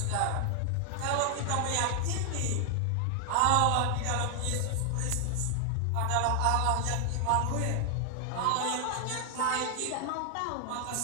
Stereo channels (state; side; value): different; both; correlation 0.00